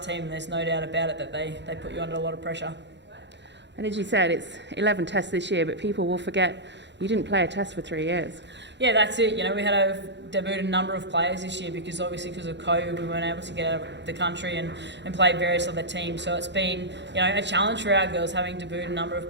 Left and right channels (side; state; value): left; late; 0.52 ms